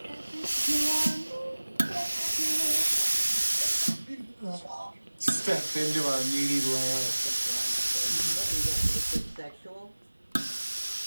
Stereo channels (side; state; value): both; inverted; correlation -1.00